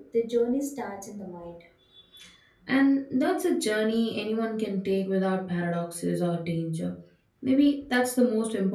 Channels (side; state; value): both; identical; correlation 1.00